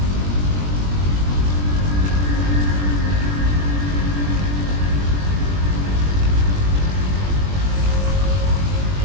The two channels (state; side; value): late; left; 21 ms